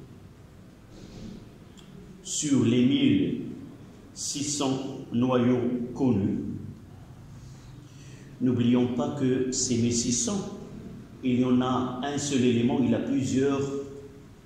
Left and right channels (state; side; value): identical; both; correlation 1.00